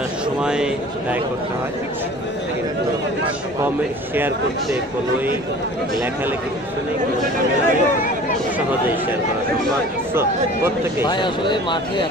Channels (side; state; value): both; normal; correlation 0.44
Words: সময় ব্যয় করতে হয়, কিন্তু কমেন্ট শেয়ার করতে কোনোই লেখালেখি কিছু নেই, কোনো ঝামেলা নেই। খুব সহজেই শেয়ার করা সম্ভব। সো প্রত্যেকে ভাই আসলে মাঠে